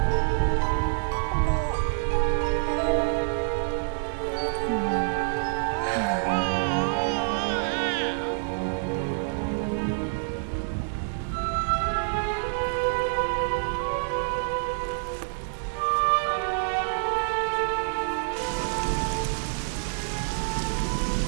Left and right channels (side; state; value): left; silent; digital silence